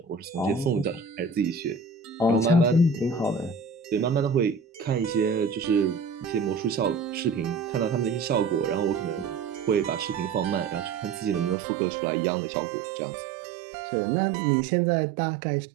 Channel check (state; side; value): drops out; left; at 11.6 s